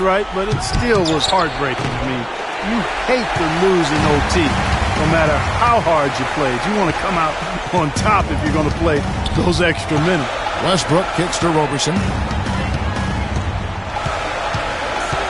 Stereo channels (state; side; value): identical; both; correlation 1.00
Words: but it still was heartbreaking. I mean, you hate to lose in OT, no matter how hard you played. You want to come out on top if you're going to play those extra minutes. Westbrook kicks to Roberson.